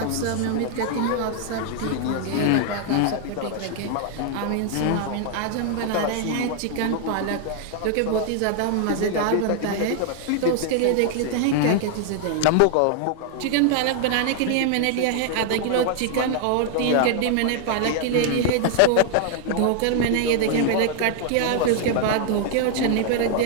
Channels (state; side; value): different; both; correlation 0.00